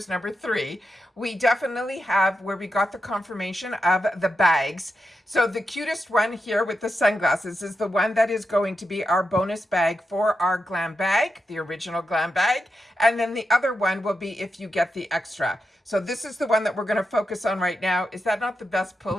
number 3. We definitely have where we got the confirmation of the bags. So the cutest one here with the sunglasses is the one that is going to be our bonus bag for our Glam Bag, the original Glam Bag. And then the other one will be if you get the extra. So this is the one that we're going to focus on right now. Is that not the best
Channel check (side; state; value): both; normal; correlation 0.88